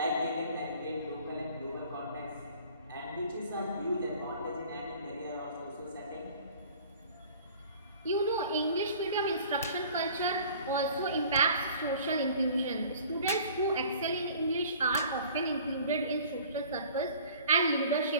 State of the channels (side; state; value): both; inverted; correlation -0.49